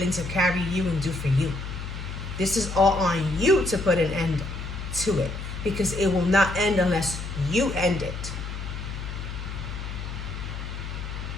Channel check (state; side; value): noise; left; hum, 7 dB below the sound